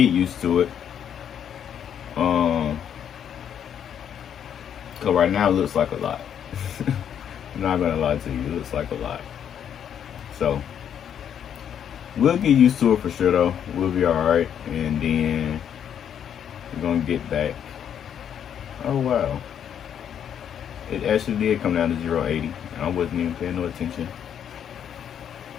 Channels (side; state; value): right; quieter; 8.9 dB